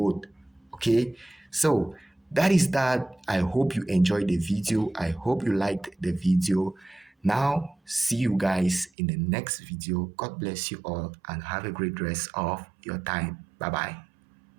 Okay, so that is that. I hope you enjoyed the video. I hope you liked the video. Now see you guys in the next video. God bless you all and have a great rest of your time. Bye bye.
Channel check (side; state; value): left; drops out; at 8.9 s